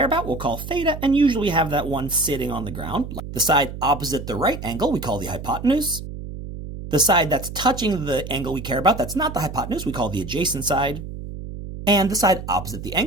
about we'll call theta, and usually have that one sitting on the ground. The side opposite the right angle we call the hypotenuse. The side that's touching the angle we care about, that's not the hypotenuse, we call the adjacent side. And the side opposite the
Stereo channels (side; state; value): right; noise; hum, 10 dB below the sound